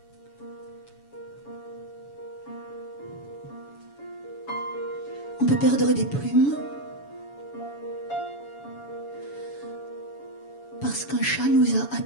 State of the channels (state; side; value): late; right; 7.1 ms